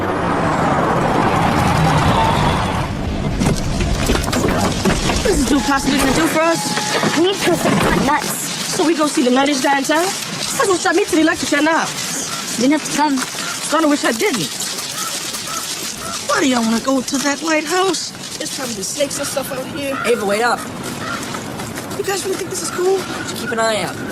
What is this dude possibly gonna do for us? We need proof that it's not nuts. So we go see the nuttiest guy in town? That's what shot me to the electric chair now. Didn't have to come. Kinda wish I didn't. Why do y'all wanna go to that lighthouse? There's probably snakes and stuff out here. Ava, wait up. You guys really think this is cool? Just keep an eye out.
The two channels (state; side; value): identical; both; correlation 1.00